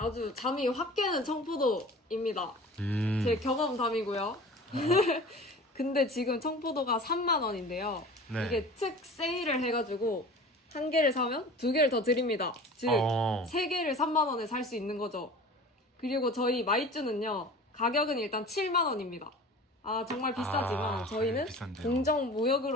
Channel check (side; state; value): both; normal; correlation 0.40